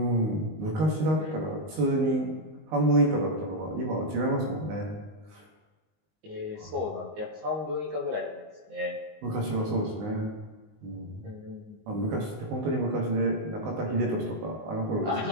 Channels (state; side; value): late; left; 19 ms